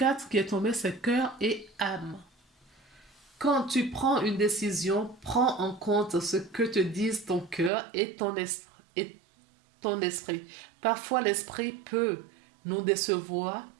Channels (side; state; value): left; drops out; at 7.7 s